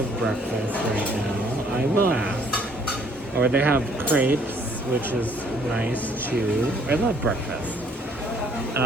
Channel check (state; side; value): normal; both; correlation 0.62